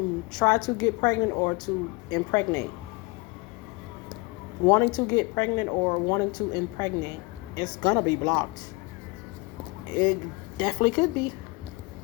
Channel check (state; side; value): quieter; right; 25.8 dB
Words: try to get pregnant or to impregnate. Wanting to get pregnant or wanting to impregnate. It's gonna be blocked. It definitely could be.